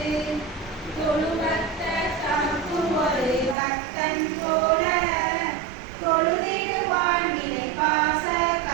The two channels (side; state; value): left; drops out; at 3.6 s